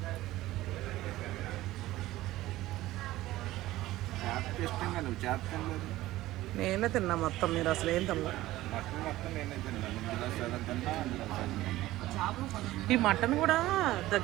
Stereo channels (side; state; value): left; quieter; 16.4 dB